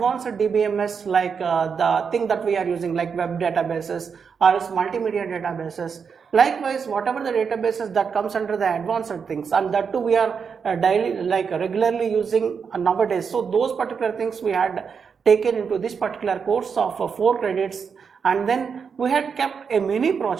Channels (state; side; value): quieter; left; 6.2 dB